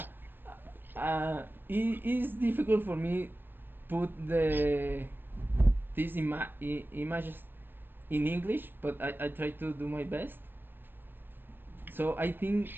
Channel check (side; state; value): left; late; 0.096 ms